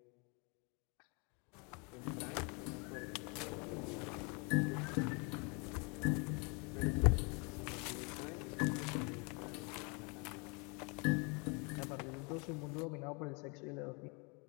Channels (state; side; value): quieter; right; 32.3 dB